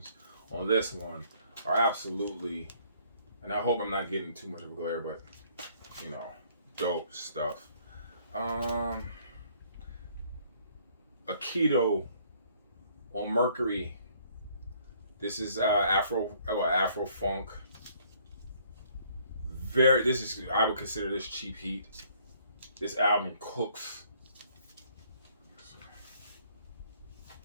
on this one are absolutely, and I hope I'm not getting too much of a glare, but you know, dope stuff. Aikido On Mercury, this is Afro funk. This is, I would consider this cheap heat. This album cooks.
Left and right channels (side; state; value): both; inverted; correlation -0.62